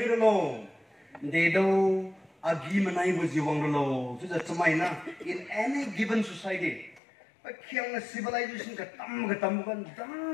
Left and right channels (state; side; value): drops out; right; at 7.0 s